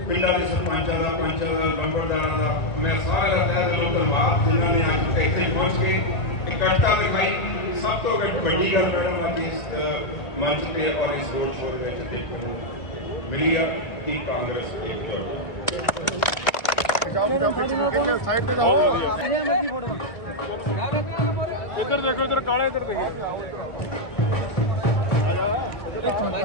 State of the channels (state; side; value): late; right; 1.6 ms